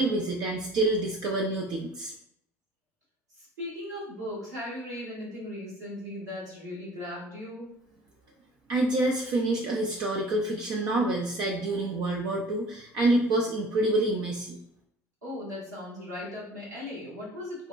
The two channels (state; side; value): normal; both; correlation 0.48